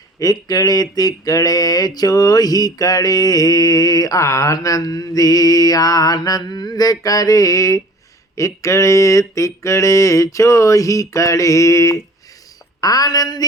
इकड़े तिकड़े चोही कड़े। आनंदी आनंद करे, इकड़े तिकड़े चोही कड़े।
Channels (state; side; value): normal; both; correlation 0.47